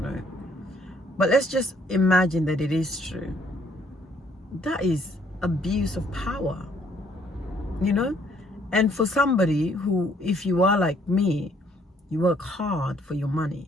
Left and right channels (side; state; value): both; normal; correlation 0.65